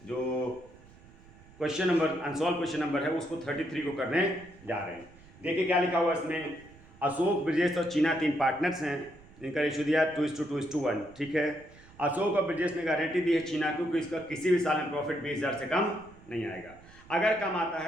जो अनसॉल्व क्वेश्चन नंबर है उसको 33 को करने जा रहे हैं। देखिए क्या लिखा हुआ इसमें। अशोक, ब्रजेश और चीना 3 पार्टनर्स हैं। इनका रेशियो दिया 2:2:1। ठीक है। अशोक और ब्रजेश ने गारंटी दी है चीना को कि इसका किसी भी साल में प्रॉफिट 20,000 से कम नहीं आएगा। अगर कम आता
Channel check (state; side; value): noise; right; rumble, 23 dB below the sound